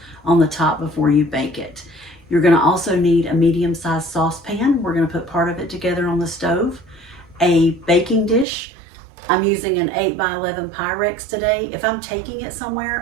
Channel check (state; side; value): drops out; left; at 8.5 s